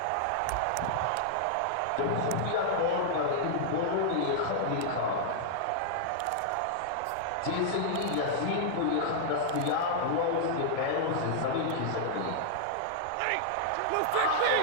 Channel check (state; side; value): different; both; correlation -0.01